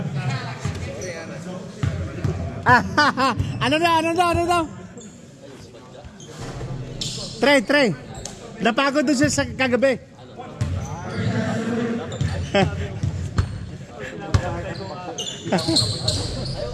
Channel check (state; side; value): identical; both; correlation 1.00